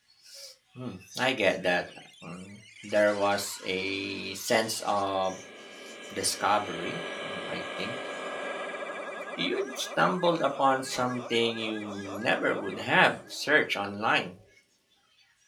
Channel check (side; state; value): both; identical; correlation 1.00